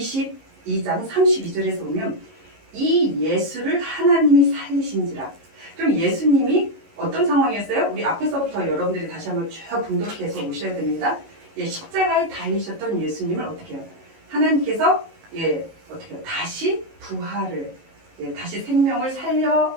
32절에서 보면 이 예수를 하나님이 살리신지라. 그럼 예수님이 어떤 상황이었어요? 우리 앞에서부터 여러분들이 다시 한번 쭉 분석해서 오셔야 됩니다. 십자가에 달리셨던 예수님을 어떻게 해요? 하나님께서 어떻게 해요? 다시 부활을 다시 생명을 살려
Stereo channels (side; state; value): left; late; 19 ms